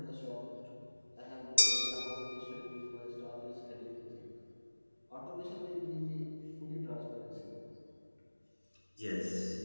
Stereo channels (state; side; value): inverted; both; correlation -1.00